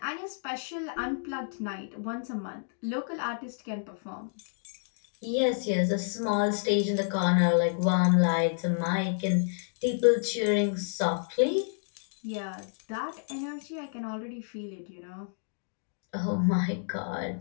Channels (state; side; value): silent; right; digital silence